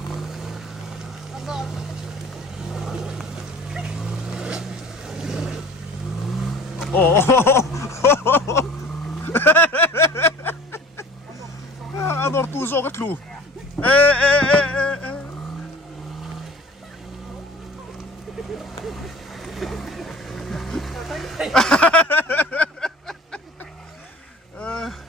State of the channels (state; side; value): normal; both; correlation 0.45